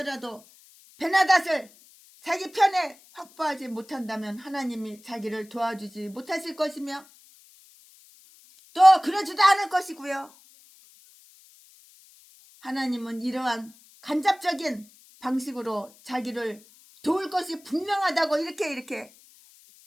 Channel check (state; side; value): noise; left; hiss, 26 dB below the sound